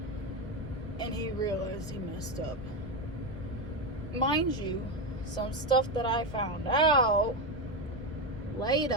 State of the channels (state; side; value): normal; both; correlation 0.12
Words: And he realized he messed up. Mind you, some stuff that I found out